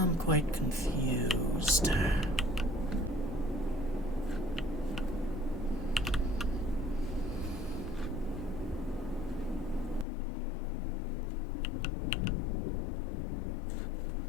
I'm quite confused.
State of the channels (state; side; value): drops out; right; at 10.1 s